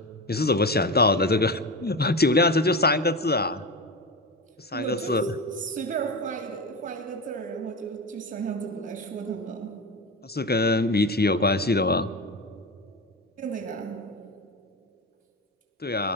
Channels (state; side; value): normal; both; correlation 0.22